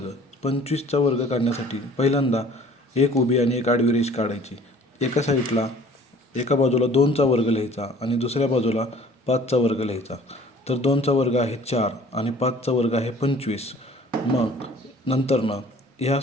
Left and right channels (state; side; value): normal; both; correlation 0.51